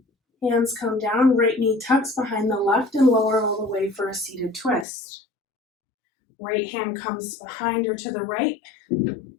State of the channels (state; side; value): drops out; right; at 4.9 s